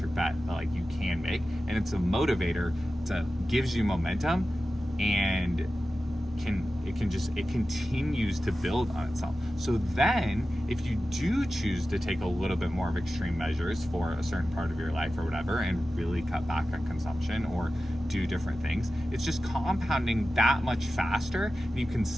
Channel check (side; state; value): both; normal; correlation 0.94